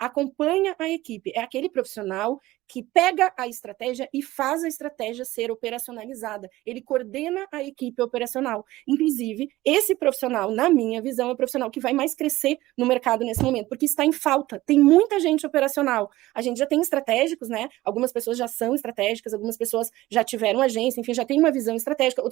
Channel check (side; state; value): left; quieter; 17.4 dB